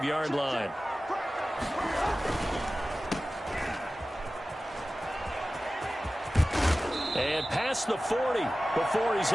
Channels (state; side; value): normal; both; correlation 0.96